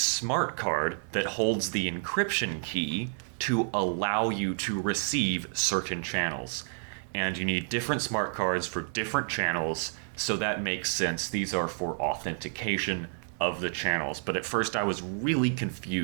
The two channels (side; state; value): left; silent; digital silence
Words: card that holds the encryption key to allow you to receive certain channels. And you need different smart cards for different channels, so that makes sense. These are for authentication of the channels. But at first I was really